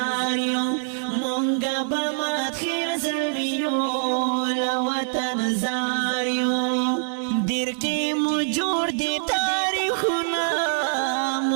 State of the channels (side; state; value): left; silent; digital silence